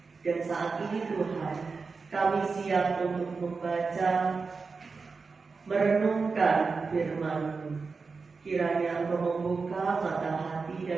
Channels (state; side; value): quieter; left; 4.6 dB